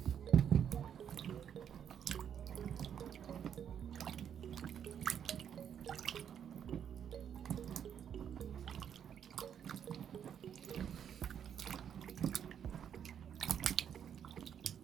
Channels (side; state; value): left; quieter; 8.6 dB